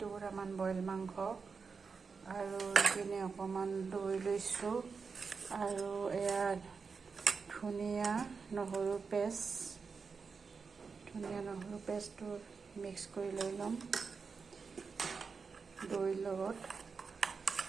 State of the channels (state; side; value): quieter; left; 5.2 dB